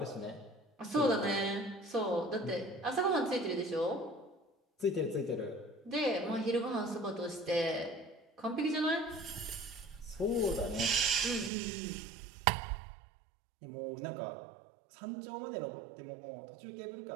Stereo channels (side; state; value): left; drops out; at 11.5 s